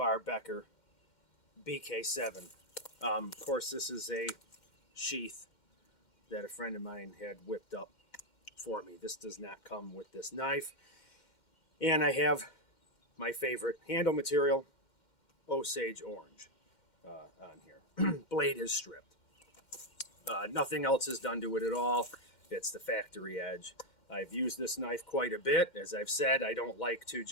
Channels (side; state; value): right; late; 2.1 ms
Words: Becker BK7. Of course, this is a sheath that a friend of mine had whipped up for me. This does not come with this knife. And I have my favorite handle material, Osage Orange, on here. Blade is stripped. Nothing else is done to it at all. It's the factory edge. I've used this knife quite a bit. As I've said, I don't like to